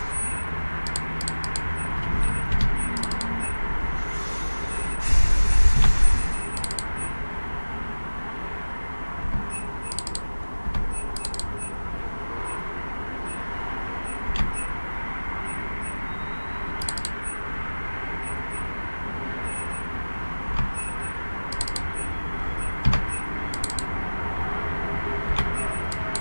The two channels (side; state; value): both; inverted; correlation -1.00